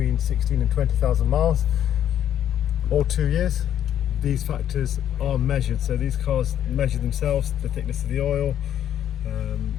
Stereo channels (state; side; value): quieter; right; 10.4 dB